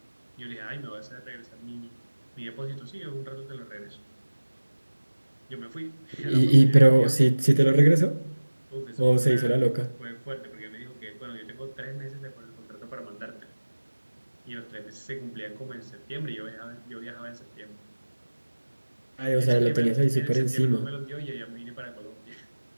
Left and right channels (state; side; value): inverted; both; correlation -1.00